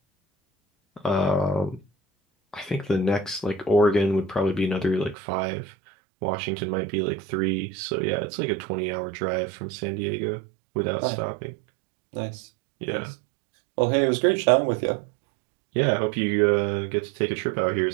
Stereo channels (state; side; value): drops out; left; at 5.2 s